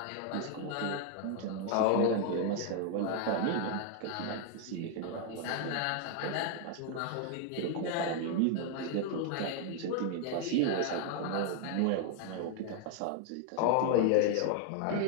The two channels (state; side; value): different; both; correlation 0.00